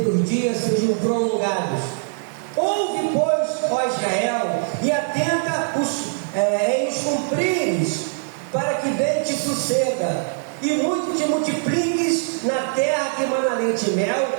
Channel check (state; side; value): silent; left; 64 dB below the other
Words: dias sejam prolongados. Ouve, pois, ó Israel, e atenta em os cumprires, para que bem te suceda, e muito te multipliques na terra que mana leite e mel,